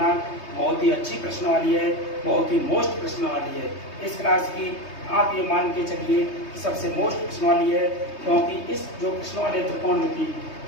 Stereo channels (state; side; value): late; right; 3.2 ms